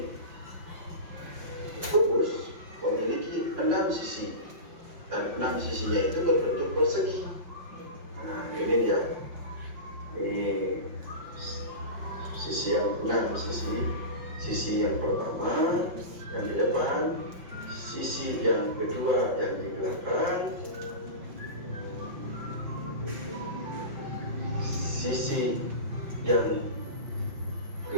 kubus memiliki 6 sisi, dan 6 sisinya itu berbentuk persegi. Nah, ini dia. Ini sisi yang 6 sisi yang pertama yang di depan, sisi yang kedua yang di belakang, sisi yang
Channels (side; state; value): left; late; 5.5 ms